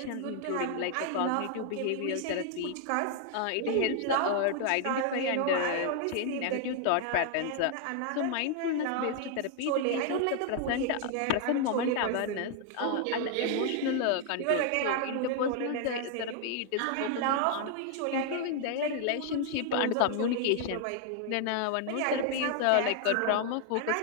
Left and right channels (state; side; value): different; both; correlation 0.00